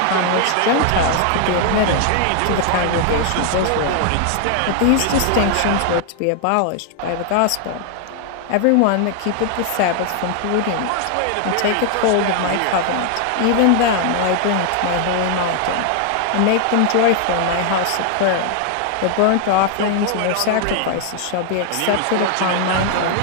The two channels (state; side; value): different; both; correlation 0.00